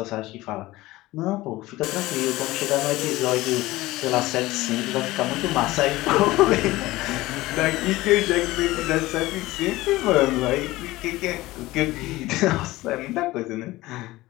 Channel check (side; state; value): right; quieter; 18.5 dB